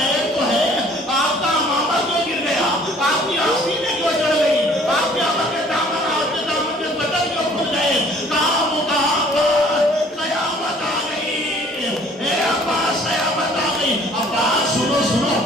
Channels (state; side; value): normal; both; correlation 0.55